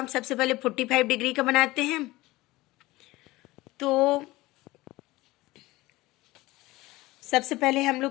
सबसे पहले 45 डिग्री का बनाते हैं। तो सबसे पहले हम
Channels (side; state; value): right; quieter; 19.5 dB